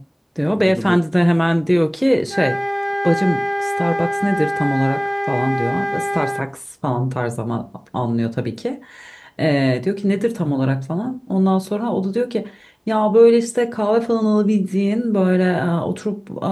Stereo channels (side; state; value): both; identical; correlation 1.00